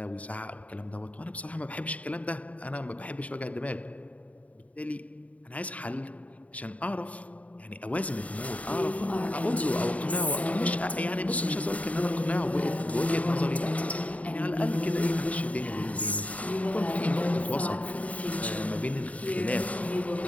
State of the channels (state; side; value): late; right; 0.068 ms